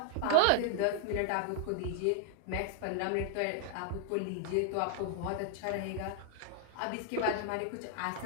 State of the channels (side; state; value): both; different; correlation 0.00